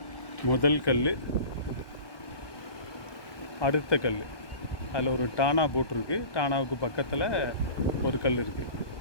முதல் கல், அடுத்த கல், அதில் ஒரு டானா போட்டிருக்கு. டானாவுக்கு பக்கத்தில் ஒரு கல் இருக்குது,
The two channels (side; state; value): right; late; 1.2 ms